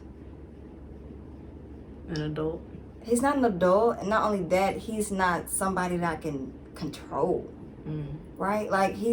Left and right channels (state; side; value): identical; both; correlation 1.00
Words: an adult. He's not an adult, and not only that, he's not somebody that I can control, right? Like,